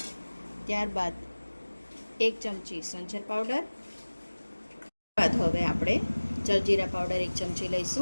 ત્યારબાદ 1 ચમચી સંચર પાવડર। બાદ હવે આપણે જલજીરા પાવડર 1 ચમચી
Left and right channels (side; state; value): both; inverted; correlation -1.00